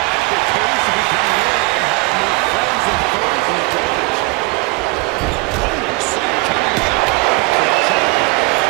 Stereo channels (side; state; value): left; quieter; 25.0 dB